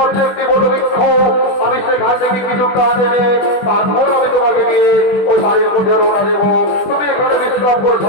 একটি বটবৃক্ষ, আমি সেখান থেকে কিছু কাঠ এনে তারপর আমি তোমাকে নিয়ে ওই বাড়ির মধ্যে রওনা দেবো। তুমি এখানে বিশ্রাম করো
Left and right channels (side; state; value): right; late; 20 ms